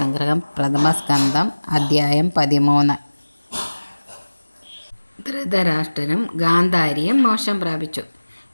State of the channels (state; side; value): inverted; both; correlation -1.00